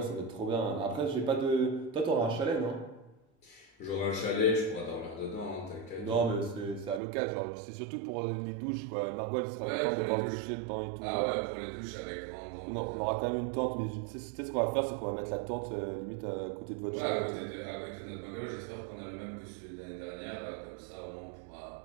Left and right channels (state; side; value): drops out; left; at 7.0 s